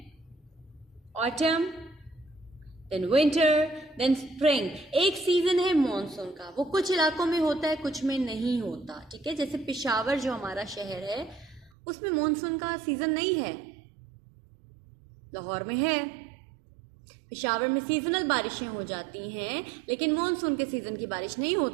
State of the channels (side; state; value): left; drops out; at 11.7 s